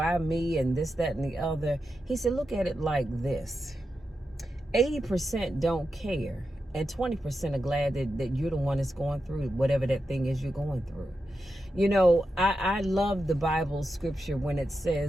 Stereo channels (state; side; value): normal; both; correlation 0.88